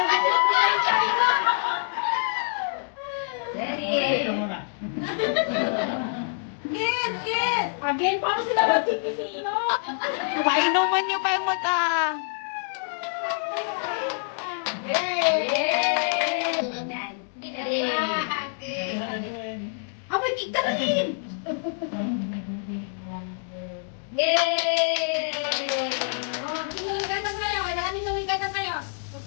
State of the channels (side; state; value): right; silent; digital silence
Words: Again, paano sila magkikisino? Painuman niyo pa yung mata. Abay, kita rin! Yay! Oh, hinuwigan na kayo. Kailangan hinuwigan na kayo.